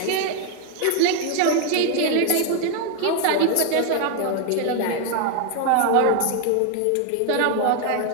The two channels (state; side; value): different; both; correlation 0.00